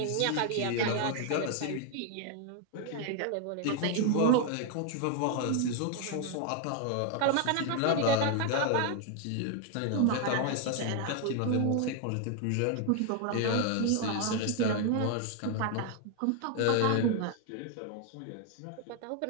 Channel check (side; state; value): both; different; correlation 0.00